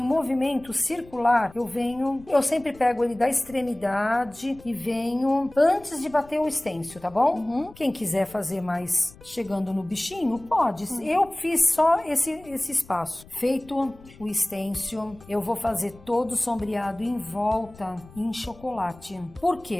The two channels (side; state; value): left; noise; rumble, 22 dB below the sound